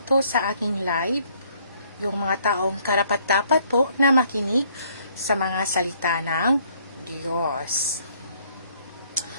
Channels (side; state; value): both; inverted; correlation -0.64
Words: sa aking live, yung mga taong karapat-dapat po na makinig sa mga salita ng Diyos.